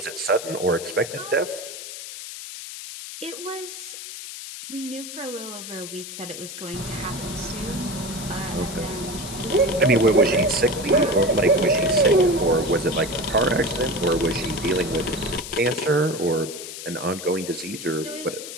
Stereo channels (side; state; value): left; noise; hiss, 10 dB below the sound